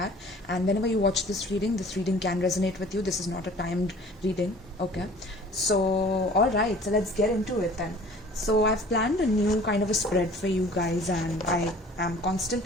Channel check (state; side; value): normal; both; correlation 0.49